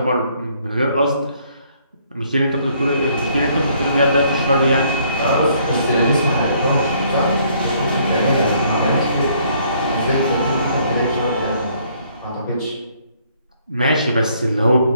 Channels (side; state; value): both; inverted; correlation -0.65